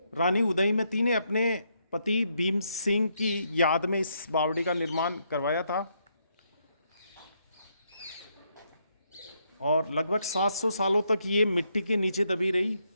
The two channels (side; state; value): both; inverted; correlation -0.76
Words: रानी उदयमती ने अपने पति भीम सिंह की याद में इस बावड़ी का निर्माण करवाया था और लगभग 700 सालों तक ये मिट्टी के नीचे दबी रही।